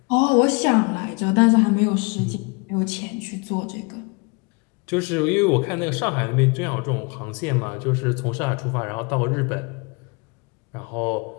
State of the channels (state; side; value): quieter; right; 30.1 dB